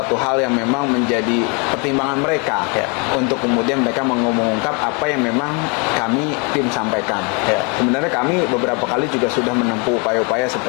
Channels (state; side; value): quieter; right; 33.1 dB